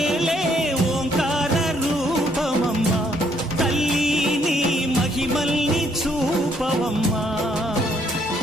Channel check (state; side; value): normal; both; correlation 0.69